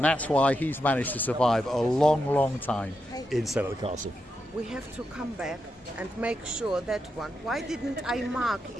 that's why he's managed to survive a long, long time in Sail at the Castle. We have to come back and make sure that one. Why didn't I mark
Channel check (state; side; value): normal; both; correlation 0.85